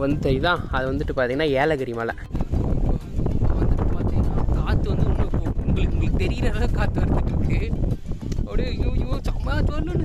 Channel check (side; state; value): both; identical; correlation 1.00